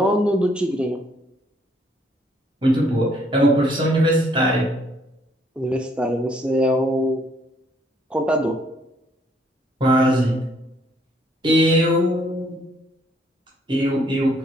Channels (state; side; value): normal; both; correlation 0.66